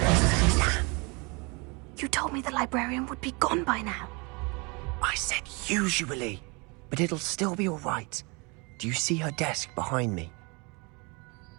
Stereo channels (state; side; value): quieter; left; 29.6 dB